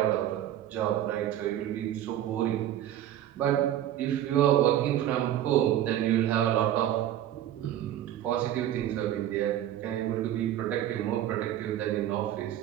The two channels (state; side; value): quieter; left; 11.9 dB